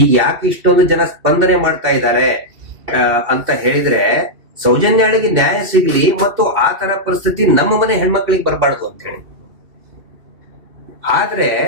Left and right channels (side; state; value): left; late; 2.7 ms